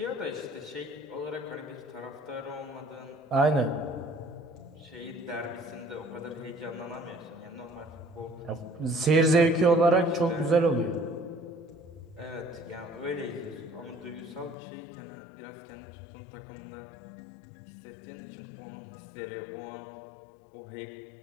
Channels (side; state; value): right; drops out; at 14.6 s